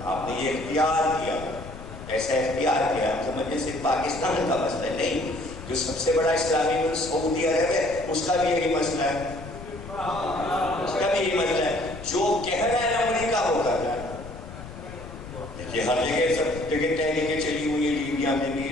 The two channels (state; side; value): noise; left; rumble, 14 dB below the sound